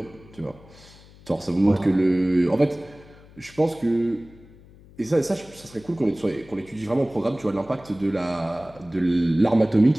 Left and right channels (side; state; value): left; noise; hum, 23 dB below the sound